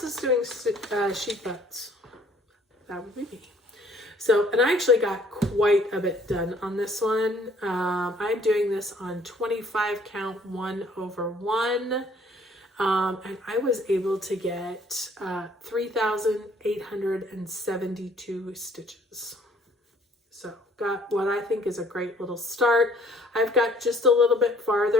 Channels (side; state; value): both; normal; correlation 0.59